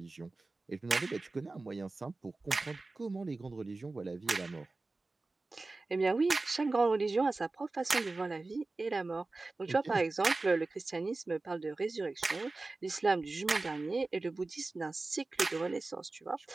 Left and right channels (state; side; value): quieter; left; 3.4 dB